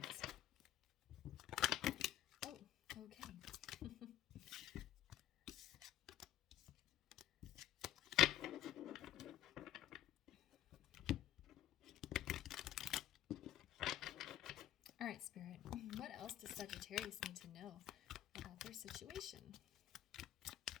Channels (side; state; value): right; quieter; 12.5 dB